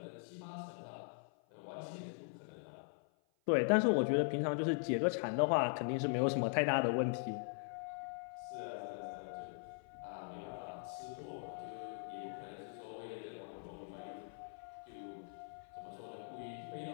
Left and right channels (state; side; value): silent; right; 51 dB below the other